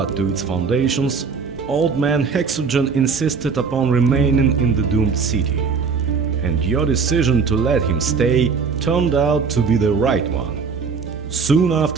to its foundations, old man Hexogen insisted upon remaining in the doomed city. And your decision to let him stay turned out to be the right one. Soon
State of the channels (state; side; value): quieter; left; 5.4 dB